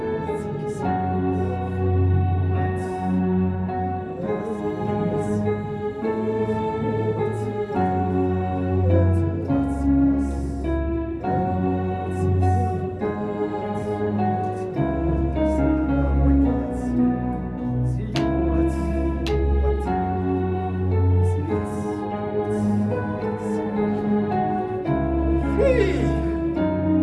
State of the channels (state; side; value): identical; both; correlation 1.00